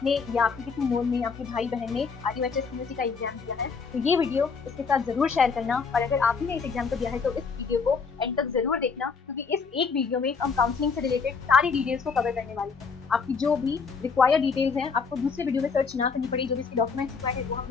या आपके किसी नोन में, आपके भाई बहन ने आरयूएचएस सीईटी का एग्जाम दिया है तो ये वीडियो उसके साथ जरूर शेयर करना। और अगर आपने इस एग्जाम को दिया है तो इस वीडियो को एंड तक जरूर देखना, क्योंकि इस एक वीडियो में हम काउंसलिंग से रिलेटेड सारी डिटेल्स को कवर करने वाले हैं। आपकी जो भी रिक्वायर्ड डिटेल्स हैं आपको दूसरे वीडियो में सर्च ना करनी पड़ी। जो भी इसके डॉक्यूमेंट्स रिक्वायर्ड है वो हम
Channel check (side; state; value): right; quieter; 5.3 dB